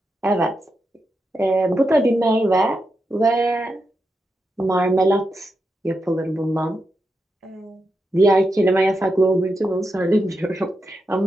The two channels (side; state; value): both; normal; correlation 0.86